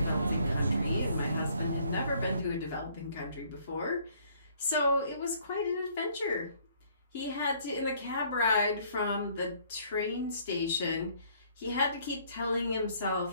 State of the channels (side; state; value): both; inverted; correlation -0.62